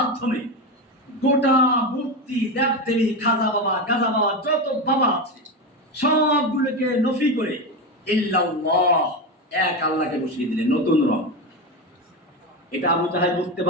গোটা মূর্তি, দেবদেবী, খাজা বাবা, গাজা বাবা, যত বাবা আছে সবগুলোকে নফি করে ইল্লাল্লাহ, এক আল্লাহকে বসিয়ে দিলেন, নতুন রং। এটা আবু জাহেল বুঝতে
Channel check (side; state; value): both; normal; correlation 0.16